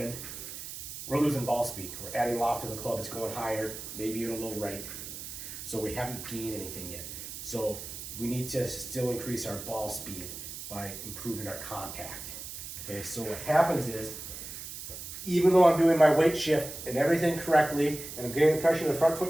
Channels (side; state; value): right; noise; hiss, 10 dB below the sound